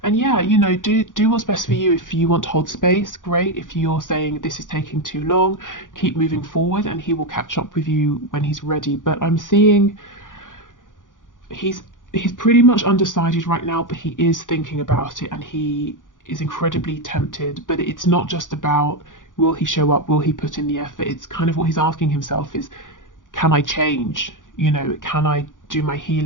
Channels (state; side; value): late; right; 0.88 ms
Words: And yeah, you know, do what's best for you. If you want to hold space, great. If you're saying this is taking too long, keep moving forward, and he will catch up with you when he's ready. But I'm seeing he's pretty much undecided right now, but he is thinking about it, and he is incredibly tempted. But it's not just about will he show up, will he put in the effort. It's kind of what he's asking himself is, can I change? You know, can I do my